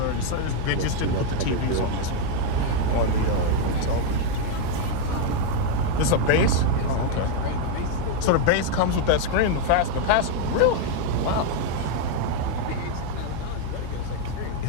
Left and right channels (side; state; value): both; different; correlation 0.01